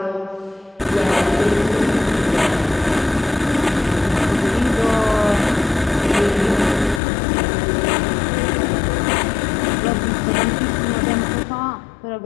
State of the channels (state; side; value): drops out; right; at 7.0 s